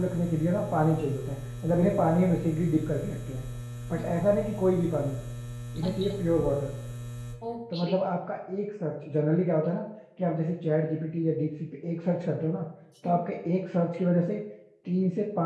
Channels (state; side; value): identical; both; correlation 1.00